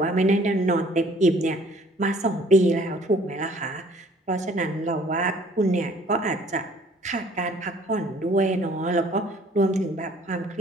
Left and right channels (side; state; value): both; normal; correlation 0.56